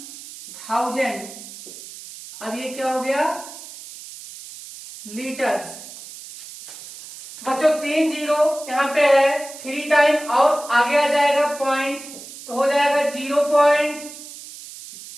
1000। अब ये क्या हो गया? लीटर्स। बच्चों 3 जीरो यहां पे है 3 टाइम और आगे आ जाएगा पॉइंट, तो हो जाएगा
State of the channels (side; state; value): right; noise; hiss, 15 dB below the sound